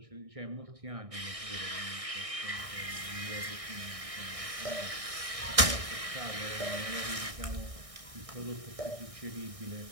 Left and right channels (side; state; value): left; late; 1.6 ms